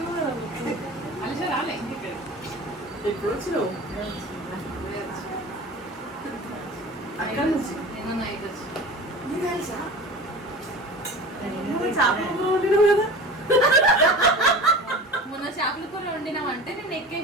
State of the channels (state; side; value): normal; both; correlation 0.36